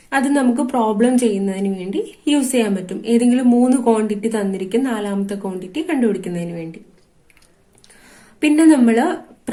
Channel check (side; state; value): both; identical; correlation 1.00